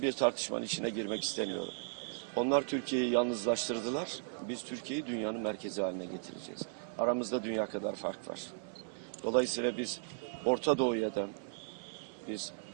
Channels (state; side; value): silent; left; 54 dB below the other